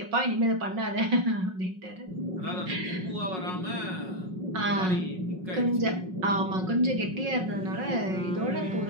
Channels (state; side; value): late; left; 5.5 ms